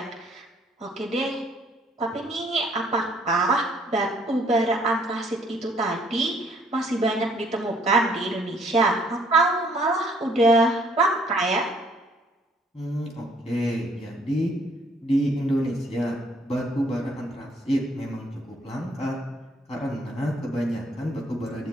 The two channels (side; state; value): both; normal; correlation 0.63